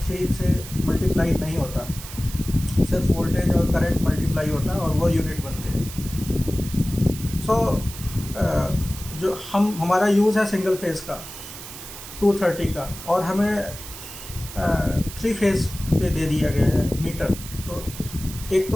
से मल्टीप्लाई नहीं होता, सिर्फ वोल्टेज और करंट मल्टीप्लाई होता और वो यूनिट बनते। जो हमारा यूज़ है सिंगल फेज़ का 230 का और हमें 3 फेज़ पे दे दिया गया है मीटर, तो एक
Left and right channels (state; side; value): noise; right; hiss, 13 dB below the sound